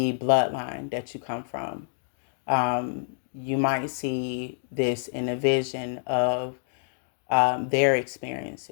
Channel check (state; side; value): silent; right; digital silence